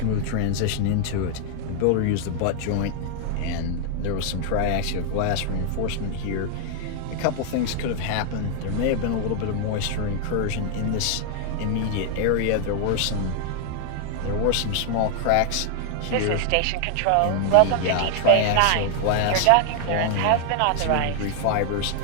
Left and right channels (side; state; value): both; different; correlation 0.00